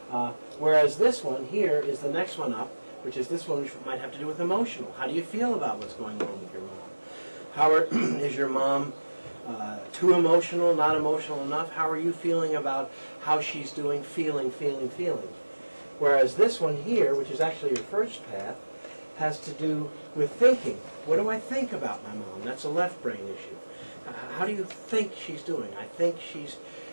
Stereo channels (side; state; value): both; inverted; correlation -1.00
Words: Whereas this one here is the next one up, which is this one, which might have to do with emotional. How do you feel about what's going on with your mom? Is your mom too emotional, not emotional enough? How are you feeling about how she's doing, feeling? Whereas this one here, which is actually your first path, has to do with thinking. What do I think about my mom? That's a left brain issue. How do you think she's doing? I think she's